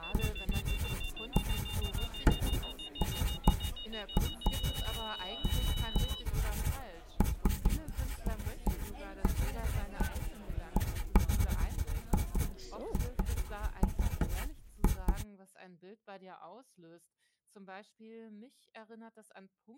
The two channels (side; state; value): both; identical; correlation 1.00